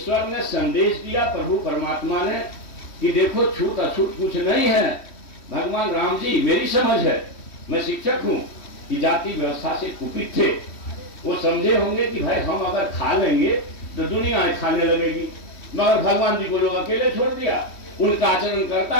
ने संदेश दिया प्रभु परमात्मा ने कि देखो छूत अछूत कुछ नहीं है। भगवान राम जी, मेरी समझ है, मैं शिक्षक हूं, कि जाति व्यवस्था से कुपित थे। वो समझे होंगे कि भाई हम अगर खा लेंगे तो दुनिया खाने लगेगी, मगर भगवान जी को लोग अकेले छोड़ दिया। उनका आचरण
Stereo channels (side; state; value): right; late; 3.1 ms